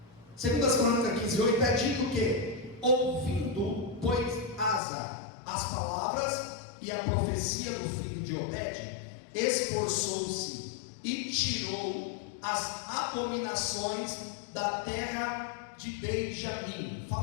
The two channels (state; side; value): drops out; right; at 4.8 s